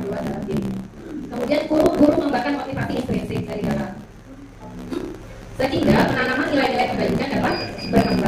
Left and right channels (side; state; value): both; identical; correlation 1.00